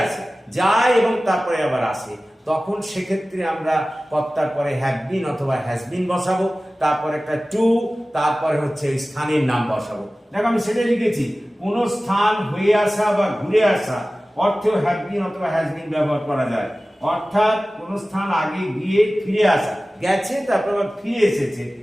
আসে, যায় এবং তারপরে আবার আসে, তখন সেক্ষেত্রে আমরা কর্তার পরে হ্যাভ বিন অথবা হ্যাজ বিন বসাবো, তারপর একটা টু, তারপরে হচ্ছে ওই স্থানের নাম বসাবো। দেখো আমি সেটাই লিখেছি, কোনো স্থান হয়ে আসা বা ঘুরে আসা অর্থেও হ্যাভ বিন অথবা হ্যাজ বিন ব্যবহার করা যায়। অর্থাৎ কোন স্থান আগে গিয়ে ফিরে আসা, গেছে তারপর আবার ফিরে এসেছে,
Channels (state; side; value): normal; both; correlation 0.97